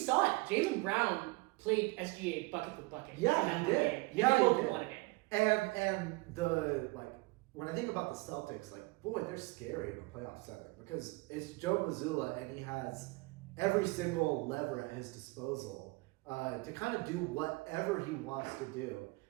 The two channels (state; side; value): quieter; left; 24.3 dB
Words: it. Jaylen Brown played SGA bucket for bucket. Yeah, he did. Game. Yeah, they both he did. won a game. And the, like, when I think about the Celtics, like, boy, they're scary in a playoff setting, because it's Joe Mazzulla and he has every single lever at his disposal to kind of do whatever he wants to do.